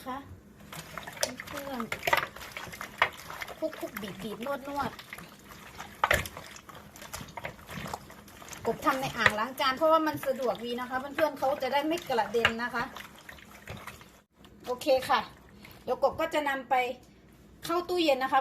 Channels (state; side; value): identical; both; correlation 1.00